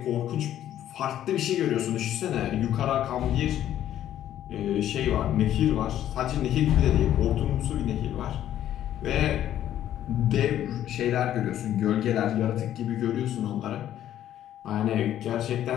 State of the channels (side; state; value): right; quieter; 11.6 dB